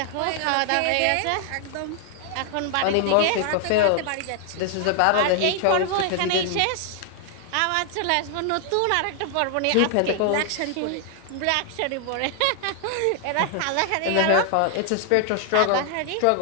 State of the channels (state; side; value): different; both; correlation 0.00